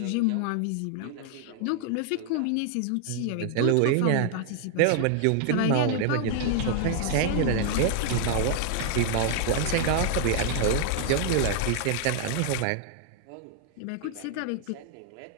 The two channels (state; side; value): different; both; correlation 0.00